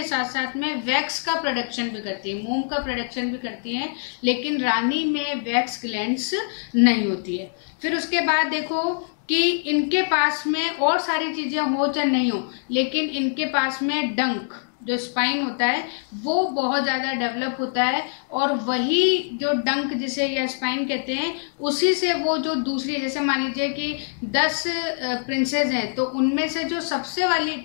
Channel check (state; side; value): silent; right; digital silence